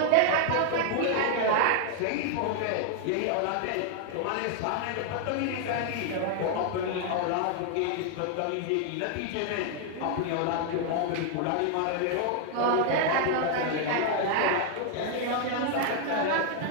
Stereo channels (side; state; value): both; different; correlation 0.00